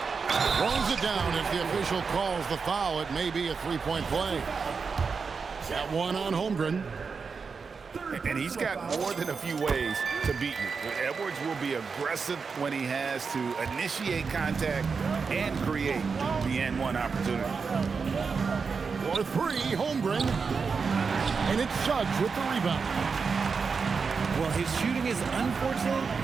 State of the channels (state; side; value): quieter; left; 5.2 dB